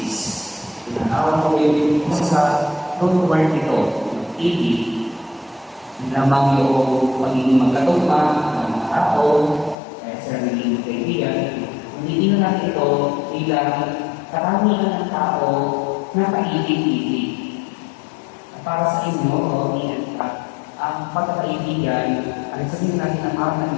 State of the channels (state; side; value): drops out; right; at 9.8 s